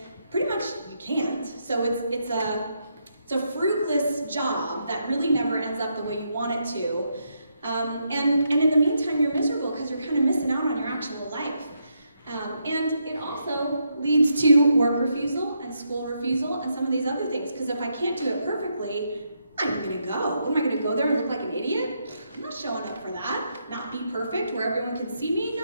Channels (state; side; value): inverted; both; correlation -0.79